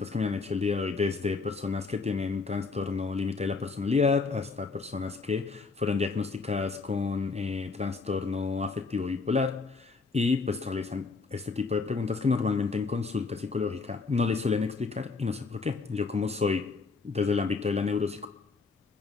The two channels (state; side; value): quieter; right; 4.4 dB